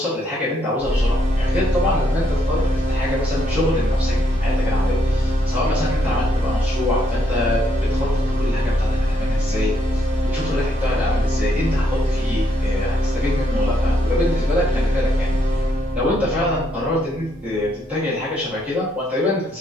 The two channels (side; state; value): both; normal; correlation 0.73